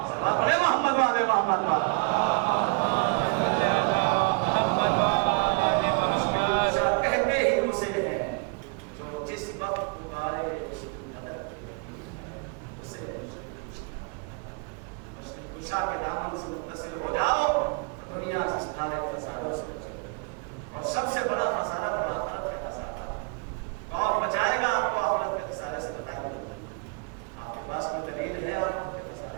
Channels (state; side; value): quieter; left; 34.1 dB